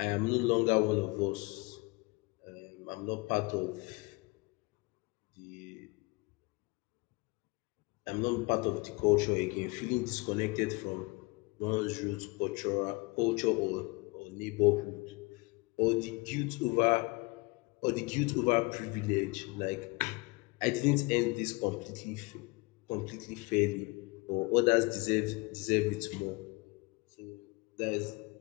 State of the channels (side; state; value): right; quieter; 26.4 dB